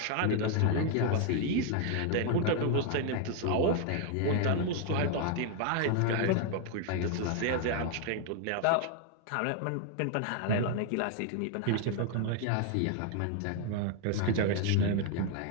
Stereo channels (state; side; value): different; both; correlation 0.00